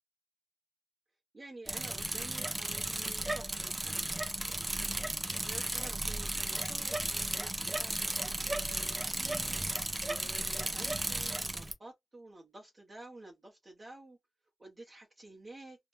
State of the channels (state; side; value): normal; both; correlation 0.98